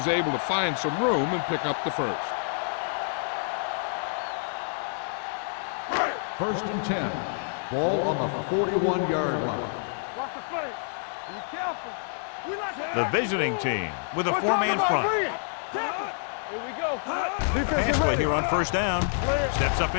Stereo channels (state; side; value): silent; right; digital silence